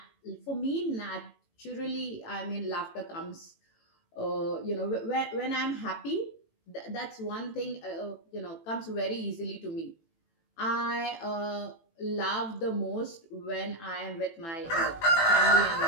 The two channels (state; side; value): late; right; 18 ms